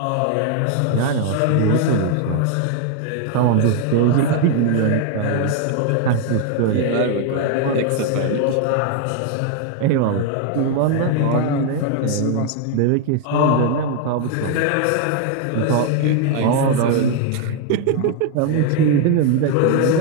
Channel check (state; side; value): different; both; correlation 0.00